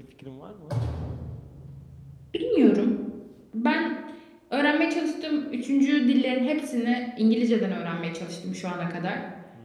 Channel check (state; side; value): identical; both; correlation 1.00